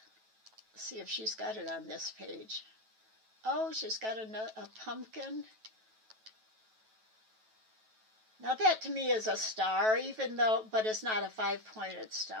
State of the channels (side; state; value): left; late; 9.2 ms